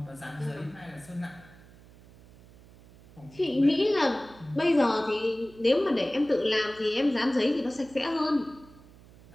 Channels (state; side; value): noise; right; hum, 23 dB below the sound